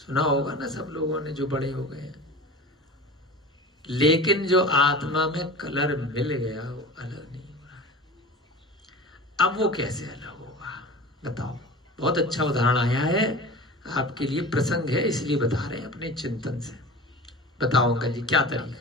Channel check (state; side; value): normal; both; correlation 0.35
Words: होगा ना सब लोगों ने जो बड़े हो गए। लेकिन जो आत्मा में कलर मिल गया वो अलग नहीं हो रहा है। अब वो कैसे अलग होगा बताओ? बहुत अच्छा उदाहरण आया है आपके लिए, प्रसंग है इसलिए बता रहे हैं अपने चिंतन से। बताओ अंकल जी क्या